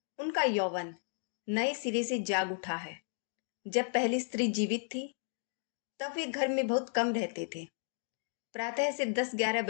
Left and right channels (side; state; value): right; silent; digital silence